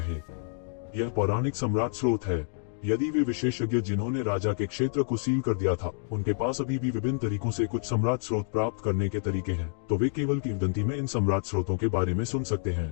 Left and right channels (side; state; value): right; silent; digital silence